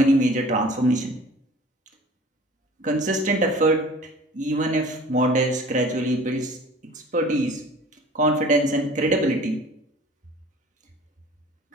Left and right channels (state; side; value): normal; both; correlation 0.46